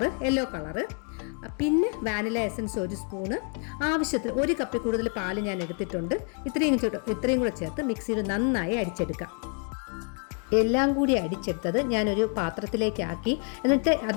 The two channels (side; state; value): right; quieter; 39.6 dB